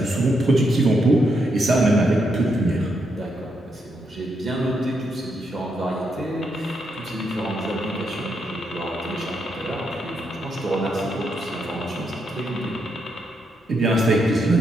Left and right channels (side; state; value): both; normal; correlation 0.80